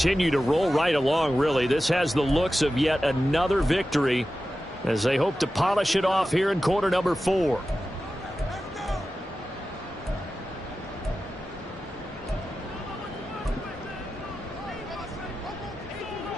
to roll right along, really. This has the looks of yet another victory as they hope to polish it off here in quarter number 4.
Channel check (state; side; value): normal; both; correlation 0.93